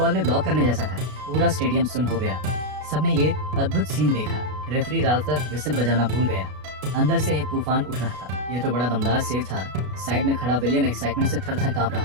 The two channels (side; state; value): left; late; 33 ms